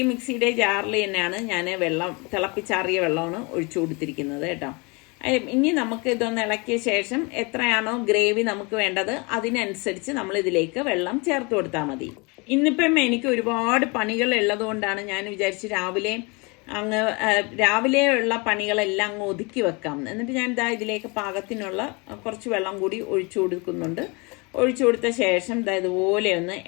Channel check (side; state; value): right; quieter; 29.1 dB